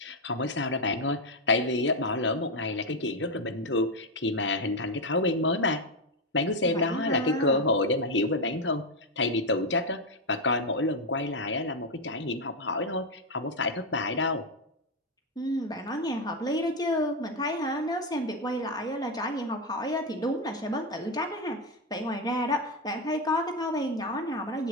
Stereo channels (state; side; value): normal; both; correlation 0.06